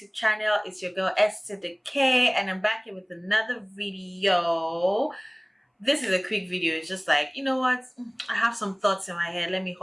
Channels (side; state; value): both; identical; correlation 1.00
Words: channel. It's your girl S to the K, and I'm back here with another video. This is a quick video. It's just like, you know what, I have some thoughts in my head. Let me